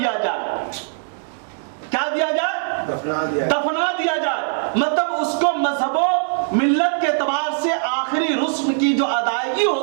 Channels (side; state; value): left; silent; digital silence